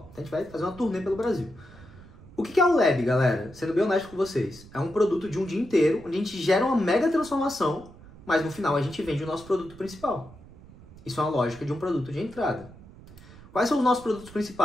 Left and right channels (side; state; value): right; noise; rumble, 20 dB below the sound